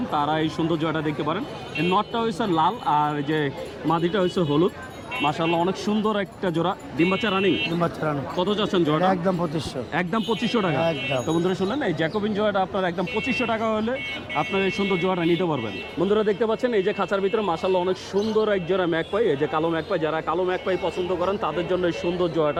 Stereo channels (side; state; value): both; identical; correlation 1.00